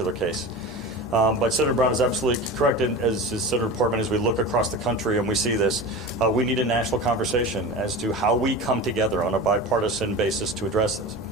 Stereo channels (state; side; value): normal; both; correlation 0.30